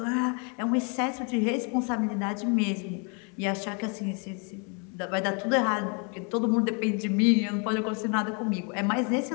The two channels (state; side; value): quieter; right; 35.6 dB